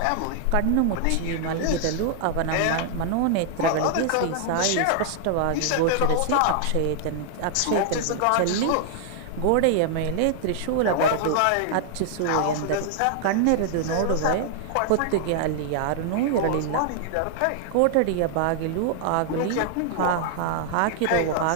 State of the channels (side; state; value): both; different; correlation 0.00